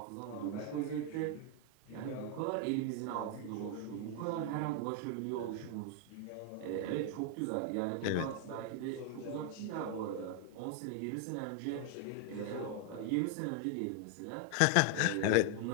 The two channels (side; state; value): both; different; correlation 0.00